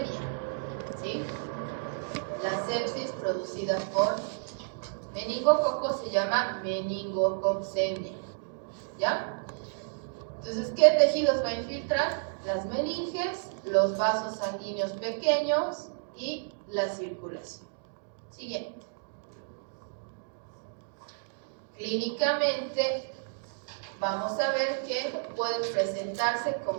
¿sí? La sepsis producida por meningococo se llama meningococcemia, ¿ya? Entonces, ¿qué tejidos va a infiltrar? Las meninges, los vasos sanguíneos pequeños y la circulación. Siguiente. Clínicamente, vamos a ver que puede presentarse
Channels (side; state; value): left; silent; digital silence